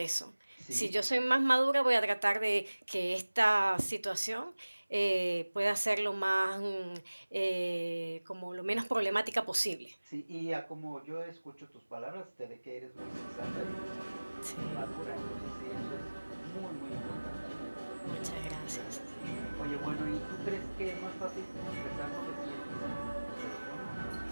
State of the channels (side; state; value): both; inverted; correlation -1.00